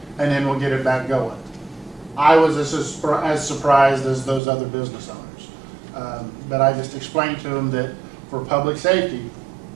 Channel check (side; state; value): left; drops out; at 4.4 s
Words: and then we'll get it back going. I was as surprised as those other business owners. But I just explained to them that for public safety,